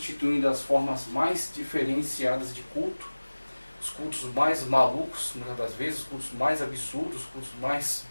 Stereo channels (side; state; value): both; inverted; correlation -1.00